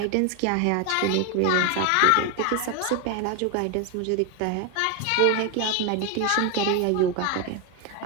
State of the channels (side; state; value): both; different; correlation 0.01